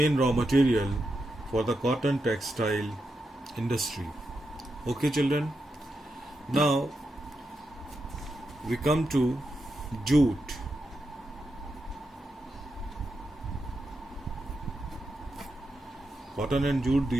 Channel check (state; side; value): normal; both; correlation 0.86